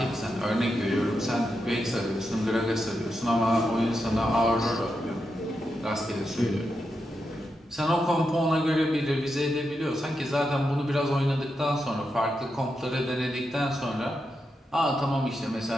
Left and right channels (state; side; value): normal; both; correlation 0.86